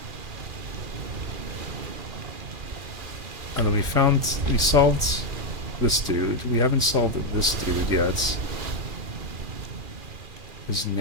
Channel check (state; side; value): late; left; 2.3 ms